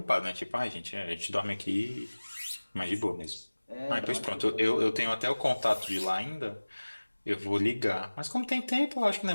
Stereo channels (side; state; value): both; inverted; correlation -1.00